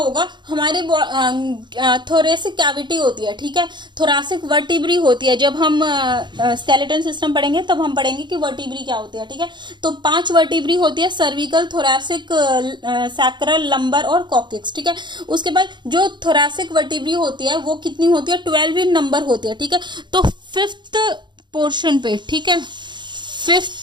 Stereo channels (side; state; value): left; late; 0.22 ms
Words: हमारे थोरेसिक कैविटी होती है, ठीक है। थोरासिक वर्टिब्री होती है। जब हम स्केलेटन सिस्टम पढ़ेंगे तब हम पढ़ेंगे कि वर्टिब्री क्या होती है, ठीक है। तो 5 वर्टिब्री होती है, सर्विकल, थोरासिक, सैक्रल, लंबर और कॉक्सिक्स, ठीक है। उसके बाद जो थोरासिक वर्टिब्री होती है वो कितनी होती है? 12 इन नंबर होती है, ठीक है। तो फिफ्थ पोर्शन पे, ठीक है,